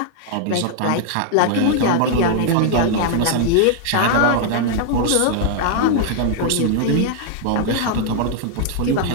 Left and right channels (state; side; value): different; both; correlation 0.00